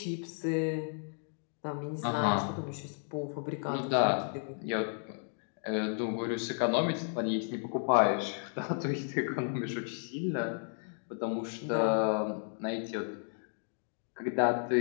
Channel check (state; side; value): silent; right; 56 dB below the other